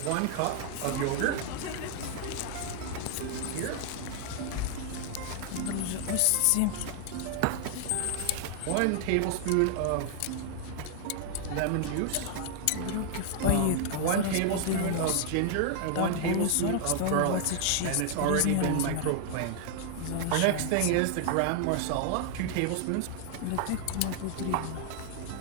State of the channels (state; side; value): different; both; correlation 0.00